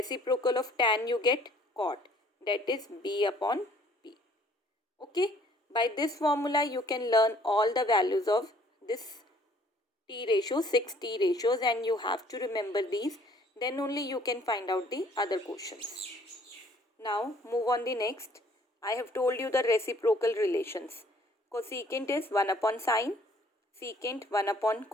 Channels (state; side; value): normal; both; correlation 0.59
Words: of tan you get cot, that is b upon b. Okay, by this formula you can learn all the values of this T ratio, 6 T ratios, and you have to remember these. Then only you can find out the other questions. Now move on the next. I have told you the reciprocal relations. Cosecant is 1 upon sine, secant 1 upon